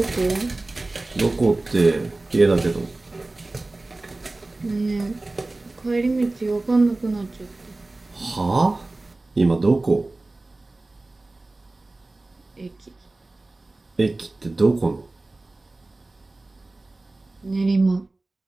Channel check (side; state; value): left; quieter; 3.0 dB